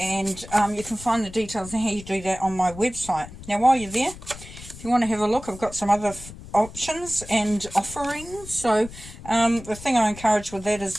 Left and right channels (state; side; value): noise; left; rumble, 15 dB below the sound